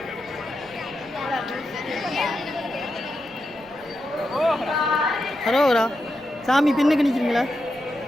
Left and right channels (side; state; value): right; noise; rumble, 26 dB below the sound